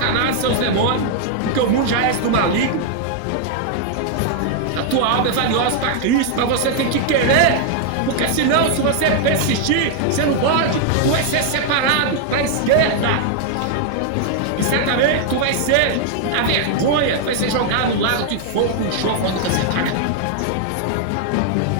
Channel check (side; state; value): both; different; correlation 0.00